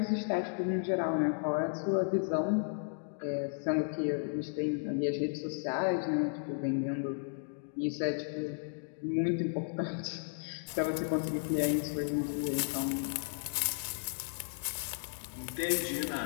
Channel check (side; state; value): right; silent; digital silence